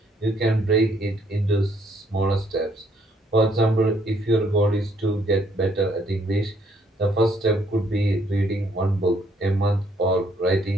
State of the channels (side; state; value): both; normal; correlation 0.67